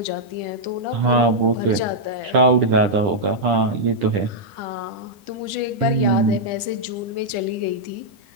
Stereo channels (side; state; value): left; late; 10 ms